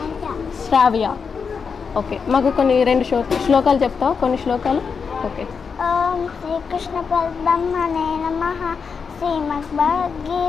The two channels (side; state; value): right; quieter; 5.7 dB